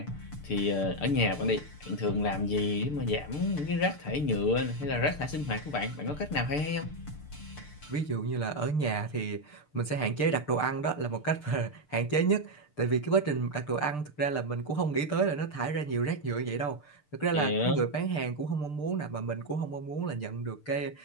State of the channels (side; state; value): right; late; 6.7 ms